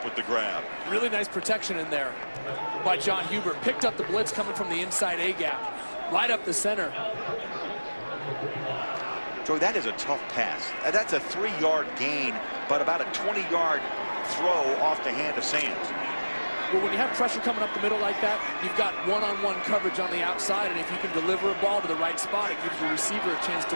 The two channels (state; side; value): inverted; both; correlation -1.00